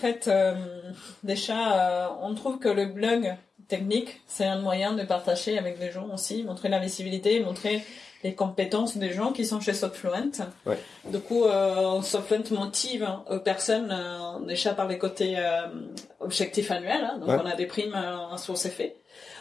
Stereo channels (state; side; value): quieter; right; 4.7 dB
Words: déjà, on trouve que le blog technique, c'est un moyen de partager avec des gens aussi, montrer la visibilité, montrer les compétences des gens qui sont chez Softfluent. Ouais. Du coup, Softfluent motive personnes déjà par les côtés objectifs annuels. Hein, donc, on a des primes sur ces faits